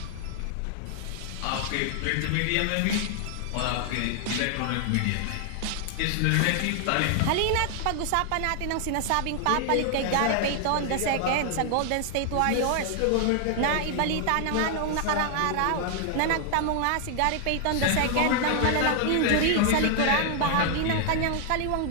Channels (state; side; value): different; both; correlation 0.00